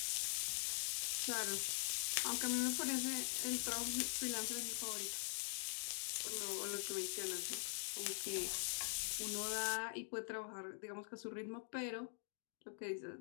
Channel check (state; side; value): silent; right; digital silence